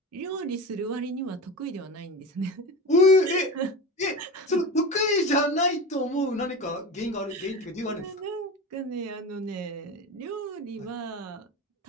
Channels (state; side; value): normal; both; correlation 0.27